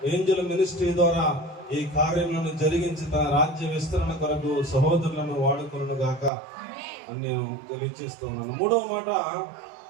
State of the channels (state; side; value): drops out; left; at 6.3 s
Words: ఏంజల్ మినిస్ట్రీ ద్వారా ఈ కార్యములను జరిగించి తన రాజ్య విస్తరణ కొరకు సహోదరులను వాడుకొనును గాక అని నేను తెలియజేస్తున్నాను. మూడవ మాట,